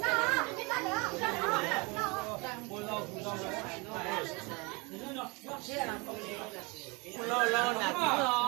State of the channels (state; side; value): quieter; left; 28.0 dB